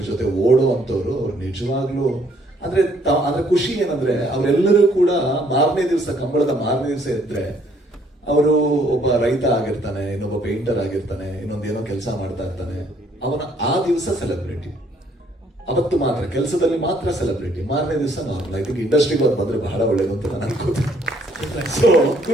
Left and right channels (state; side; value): normal; both; correlation 0.65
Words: ಜೊತೆ ಓಡೋ ಅಂತವ್ರು ಅವ್ರು ನಿಜವಾಗ್ಲೂ ಅಂದ್ರೆ ಖುಷಿ ಏನಂದ್ರೆ ಅವರೆಲ್ಲರೂ ಕೂಡ ಮಾರನೇ ದಿವಸ, ಕಂಬಳದ ಮಾರನೇ ದಿವಸ ಇದ್ರೆ ಅವರು ಒಬ್ಬ ರೈತ ಆಗಿರ್ತಾನೆ, ಇನ್ನೊಬ್ಬ ಪೇಂಟರ್ ಆಗಿರ್ತಾನೆ, ಇನ್ನೊಂದೇನೋ ಕೆಲಸ ಮಾಡ್ತಾ ಇರ್ತಾನೆ. ಅವನ ಆ ದಿವಸ ಸೆಲೆಬ್ರಿಟಿ, ಅವತ್ತು ಮಾತ್ರ ಕೆಲಸದಲ್ಲಿ ಮಾತ್ರ ಸೆಲೆಬ್ರಿಟಿ, ಮಾರನೇ ದಿವಸ ನಾರ್ಮಲ್. ಐ ಥಿಂಕ್ ಇಂಡಸ್ಟ್ರಿಗೆ ಅದು ಬಂದ್ರೆ ಬಹಳ ಒಳ್ಳೇದು ಅಂತ ನಾನು ಅನ್ಕೋತೀನಿ. ಸೊ